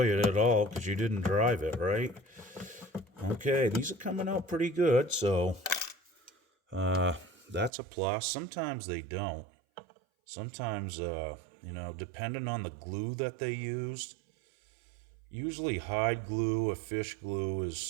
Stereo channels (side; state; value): left; drops out; at 7.7 s